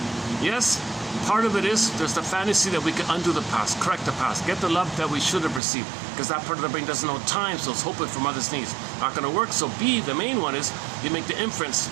Yes, part of it is there's the fantasy that we can undo the past, correct the past, get the love that we should have received, because that part of the brain doesn't know time, so it's hoping for mother's needs. Not going to work. So B, the main one, is you make the inference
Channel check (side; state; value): left; drops out; at 5.6 s